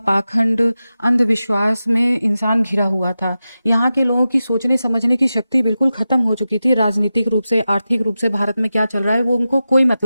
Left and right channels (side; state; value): both; inverted; correlation -0.93